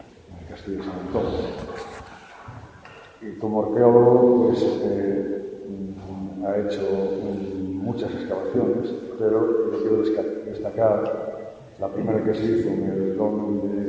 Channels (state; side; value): identical; both; correlation 1.00